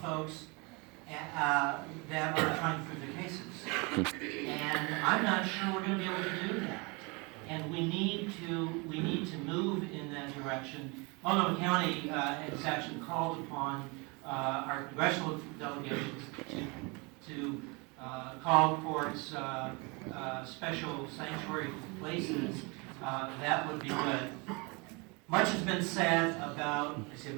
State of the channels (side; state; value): left; quieter; 28.9 dB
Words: folks that are trying to prove their cases. And I'm not sure we're going to be able to do that. And we need to move in that direction. Multnomah County has actually called upon our congressional delegations to call courts special sanctuary places. That would be good. Much has been said about, I see